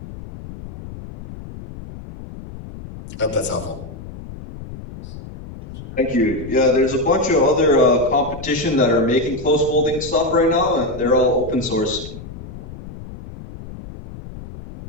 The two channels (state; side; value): noise; left; rumble, 13 dB below the sound